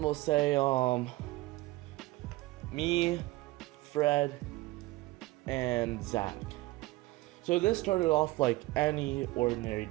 we'll say me, Fred, and Zach. So this started off like any ordinary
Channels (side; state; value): left; quieter; 19.8 dB